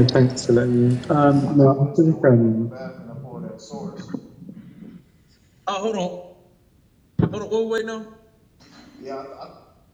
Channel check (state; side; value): identical; both; correlation 1.00